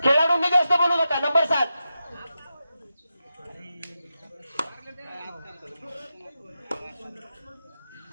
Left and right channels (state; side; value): inverted; both; correlation -0.90